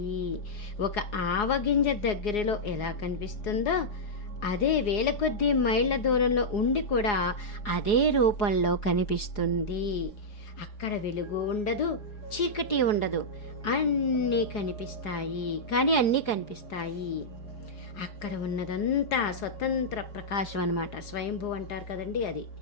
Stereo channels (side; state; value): right; late; 4.8 ms